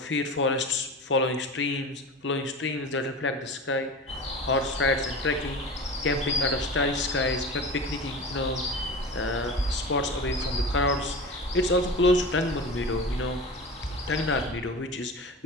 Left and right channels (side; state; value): both; normal; correlation 0.32